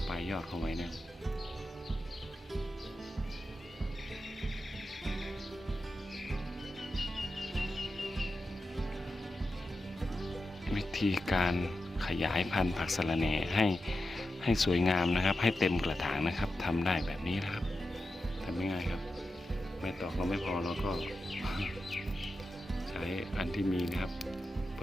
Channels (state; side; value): normal; both; correlation 0.90